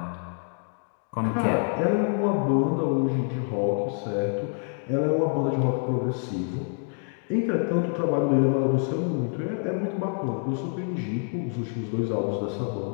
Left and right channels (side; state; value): right; silent; 55 dB below the other